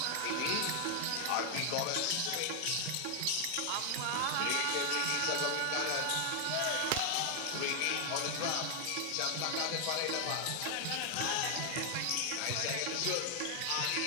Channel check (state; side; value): different; both; correlation 0.00